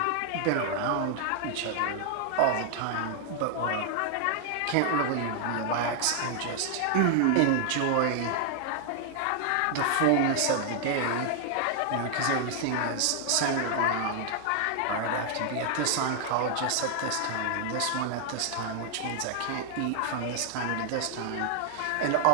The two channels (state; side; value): different; both; correlation 0.00